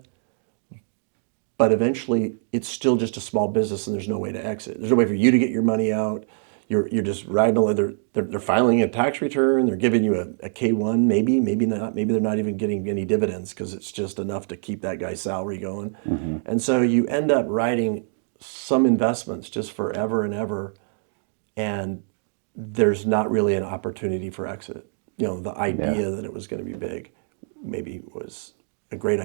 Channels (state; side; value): silent; left; digital silence